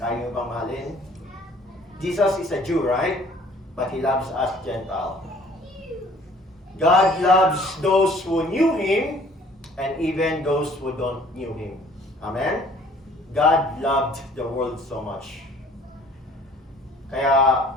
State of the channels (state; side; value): normal; both; correlation 0.54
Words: nyo bang mahalin? Jesus is a Jew, right? But He loves us Gentile. God loves those who knew Him and even those who don't knew Him. Amen? God loved the world so much. Kaya